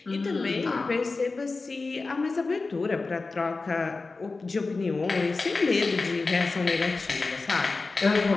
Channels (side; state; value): right; quieter; 3.8 dB